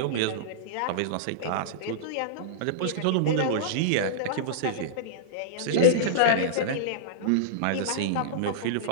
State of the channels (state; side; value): different; both; correlation -0.03